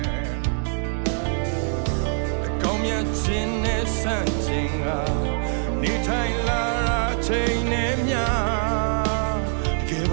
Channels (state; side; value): silent; left; 63 dB below the other